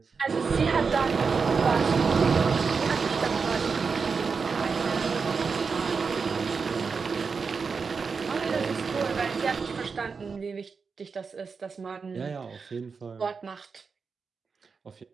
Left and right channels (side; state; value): left; quieter; 5.2 dB